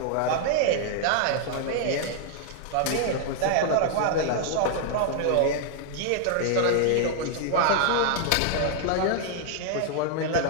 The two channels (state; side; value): different; both; correlation 0.00